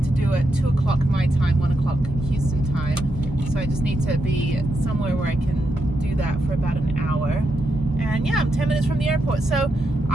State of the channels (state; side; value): normal; both; correlation 0.83